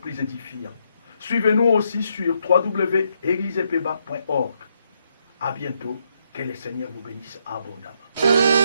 édifiants. Suivez-nous aussi sur www.eglisepeba.org. À bientôt. Que le Seigneur vous bénisse abondamment.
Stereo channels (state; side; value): inverted; both; correlation -0.77